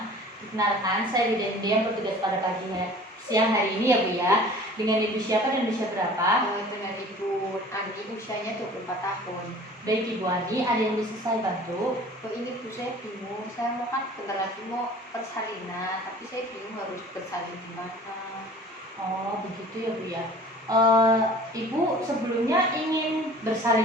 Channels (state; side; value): normal; both; correlation 0.46